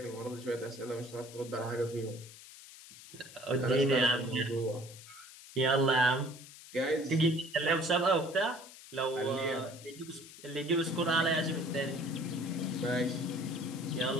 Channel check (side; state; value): left; noise; hiss, 17 dB below the sound